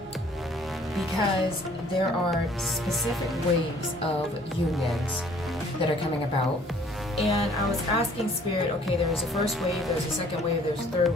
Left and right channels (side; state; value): both; normal; correlation 0.56